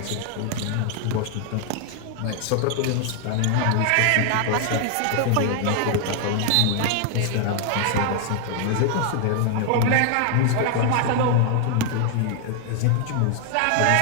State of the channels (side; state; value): both; different; correlation 0.00